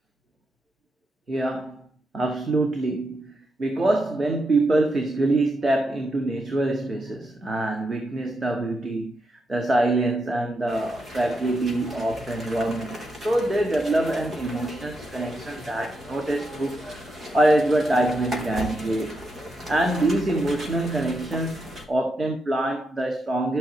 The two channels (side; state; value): both; normal; correlation 0.83